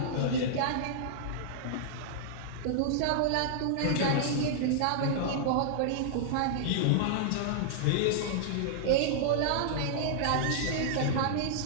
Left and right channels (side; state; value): both; different; correlation -0.01